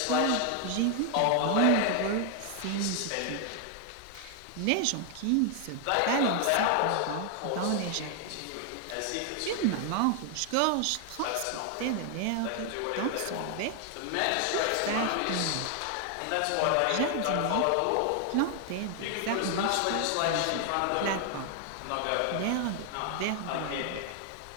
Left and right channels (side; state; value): both; different; correlation 0.00